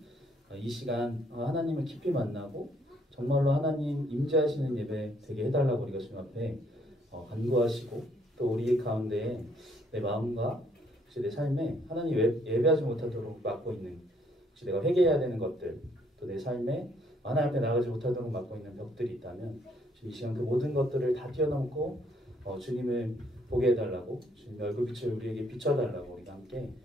이 시간 하나님을 깊이 만나고 정말로 하나님 임재하시는 예배 되게 해달라고 우리가 주님 앞에 간구하시고 또 우리 가운데 내 마음과 혹시 내 삶에 하나님 예배하지 못하도록 막고 있는 혹시 내가 회개해야 되는 것들 또 내 삶에 하나님 앞에 나가지 못하도록 막고 있는 벽들이 있다면 지금 이 시간 그 모든 것들을 다 뛰어넘고 주님을 보게 해달라고 주님의 얼굴빛을 우리에게 비춰달라고 우리가 함께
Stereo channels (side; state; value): both; normal; correlation 0.67